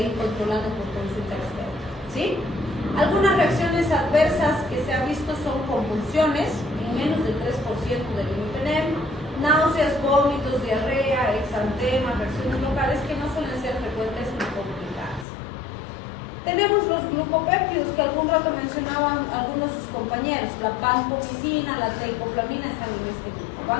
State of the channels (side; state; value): right; drops out; at 15.2 s